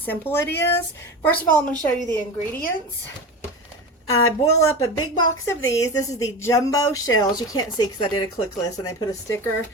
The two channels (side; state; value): both; normal; correlation 0.27